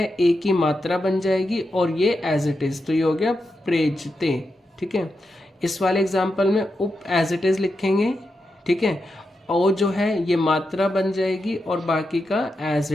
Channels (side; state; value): both; normal; correlation 0.87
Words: ए की मात्रा बन जाएगी और ये एज इट इज, तो ये हो गया प्रेजते, ठीक है। इस वाले एग्जाम्पल में उप एज इट इज लिखेंगे, ठीक है, और जो है ये मात्रा बन जाएगी और बाकी का एज